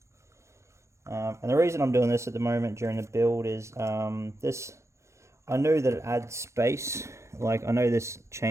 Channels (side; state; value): left; late; 0.14 ms